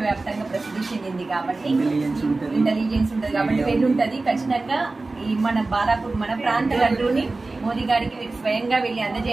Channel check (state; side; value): quieter; left; 3.4 dB